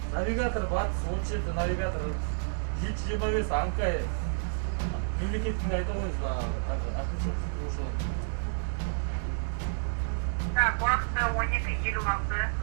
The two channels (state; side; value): silent; left; digital silence